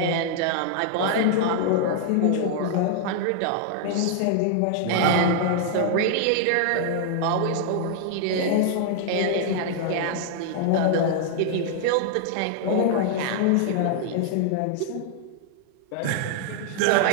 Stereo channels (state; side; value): different; both; correlation -0.01